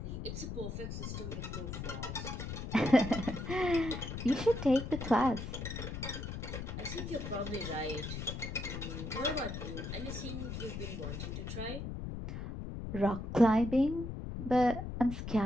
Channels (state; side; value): noise; left; rumble, 6 dB below the sound